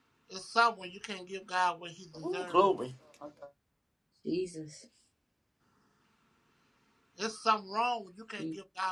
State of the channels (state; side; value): identical; both; correlation 1.00